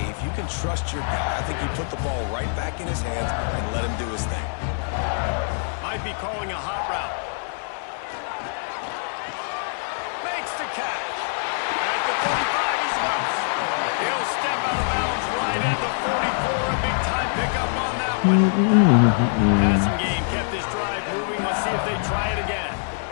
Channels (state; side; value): silent; right; 62 dB below the other